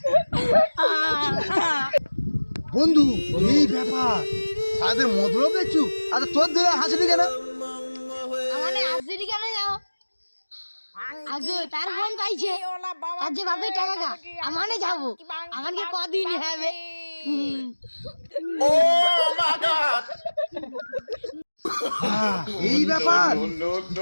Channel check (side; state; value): both; inverted; correlation -1.00